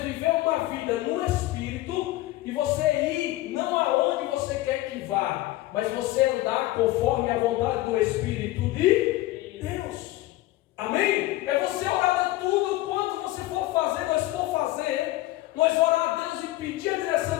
uma vida no Espírito e você ir não aonde você quer que vá, mas você andar conforme a vontade do Espírito de Deus. Amém? É você orar de tudo quanto você for fazer, nós orar a Deus e pedir a direção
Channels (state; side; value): quieter; right; 17.2 dB